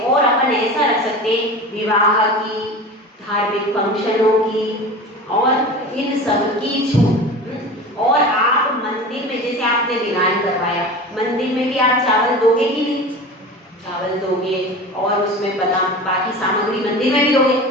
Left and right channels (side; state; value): both; normal; correlation 0.33